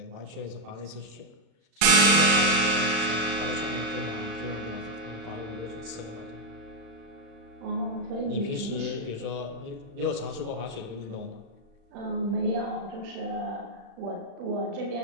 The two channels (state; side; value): late; left; 35 ms